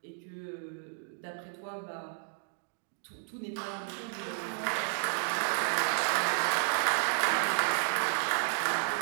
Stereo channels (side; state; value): left; silent; 56 dB below the other